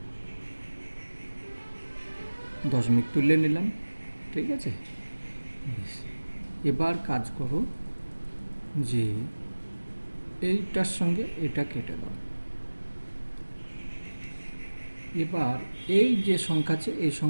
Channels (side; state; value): both; inverted; correlation -1.00